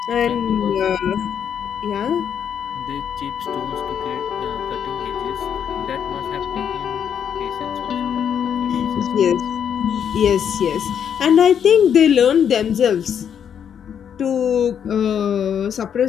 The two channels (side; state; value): right; quieter; 8.3 dB